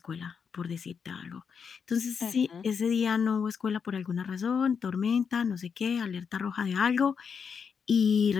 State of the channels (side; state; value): right; quieter; 6.4 dB